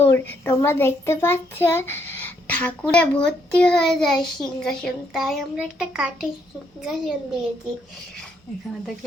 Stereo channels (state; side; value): normal; both; correlation 0.73